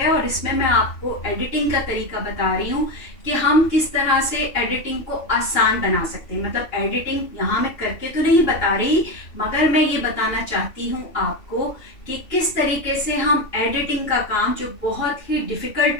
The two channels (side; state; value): right; late; 2.9 ms